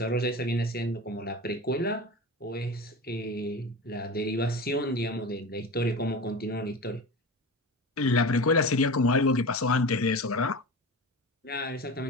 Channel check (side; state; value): both; normal; correlation 0.29